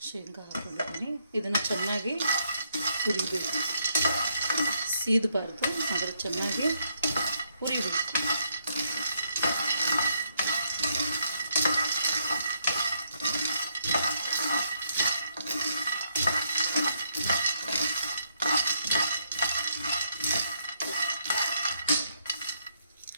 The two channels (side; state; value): both; inverted; correlation -0.74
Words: ಶೇಂಗಾ ಹಾಕೊಂಡಿದ್ದೀನಿ. ಇದನ್ನು ಚೆನ್ನಾಗಿ ಹುರಿಬೇಕು, ಸೀದಬಾರ್ದು, ಆದರೆ ಚೆನ್ನಾಗಿ ಹುರಿಬೇಕು.